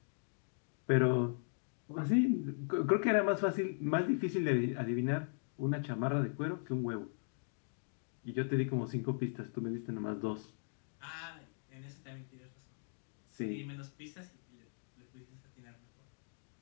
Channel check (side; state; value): right; silent; digital silence